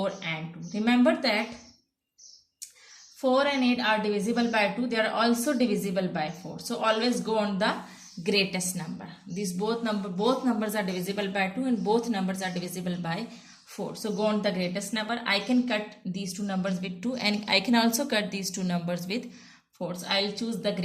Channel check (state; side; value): identical; both; correlation 1.00